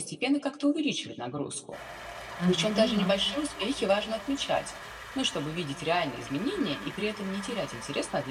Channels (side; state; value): both; identical; correlation 1.00